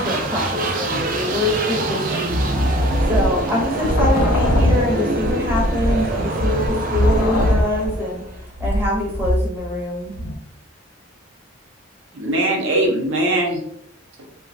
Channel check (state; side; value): normal; both; correlation 0.49